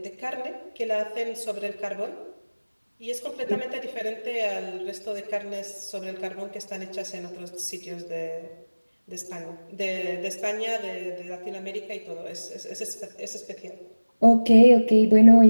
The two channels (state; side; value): inverted; both; correlation -1.00